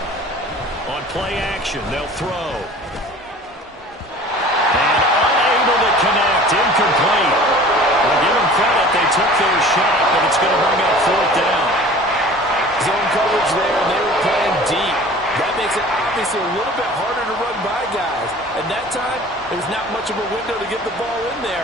On play action, they'll throw. And unable to connect, incomplete. Well, give them credit, they took their shot, but it's going to bring up 4th down. Zone coverage there, and they were playing deep. That makes it obviously a little bit harder to run by guys. And that time, there's not much of a window to get the ball in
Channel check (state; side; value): normal; both; correlation 0.44